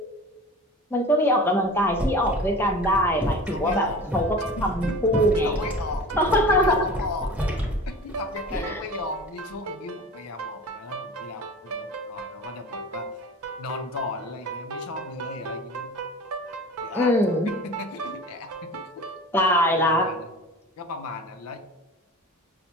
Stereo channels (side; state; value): both; normal; correlation 0.37